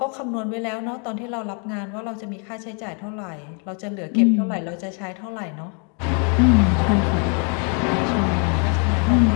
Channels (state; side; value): quieter; right; 38.4 dB